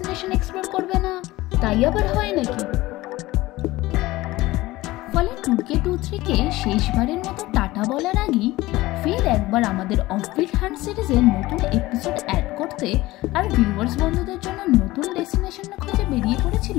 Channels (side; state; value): right; quieter; 18.6 dB